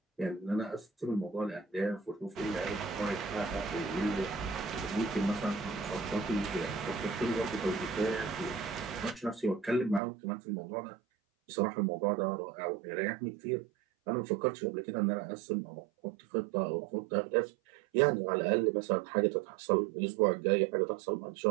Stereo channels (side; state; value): left; drops out; at 10.0 s